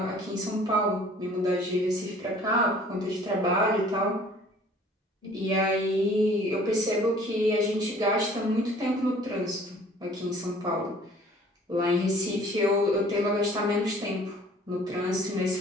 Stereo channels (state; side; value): normal; both; correlation 0.52